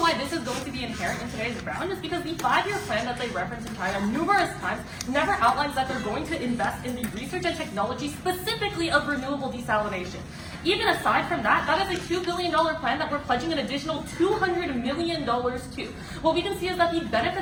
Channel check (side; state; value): both; identical; correlation 1.00